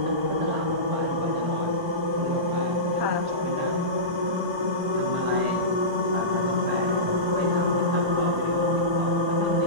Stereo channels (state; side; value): late; left; 1.2 ms